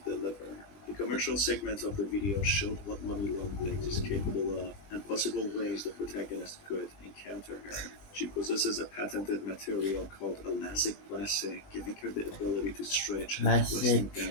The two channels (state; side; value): late; right; 20 ms